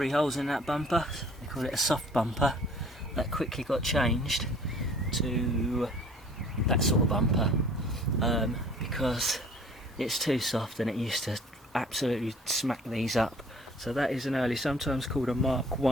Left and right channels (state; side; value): normal; both; correlation 0.52